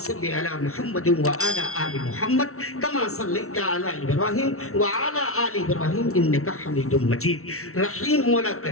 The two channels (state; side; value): late; right; 0.63 ms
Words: अला मुहम्मद व अला आलि मुहम्मद कमा सल्लैता अला इब्राहीम व अला आलि इब्राहीम इन्नका हमीदुम मजीद। रहीम मौला,